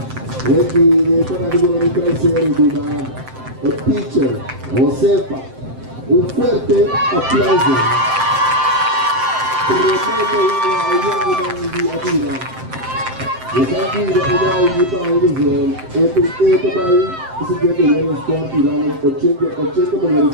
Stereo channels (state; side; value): late; left; 7.7 ms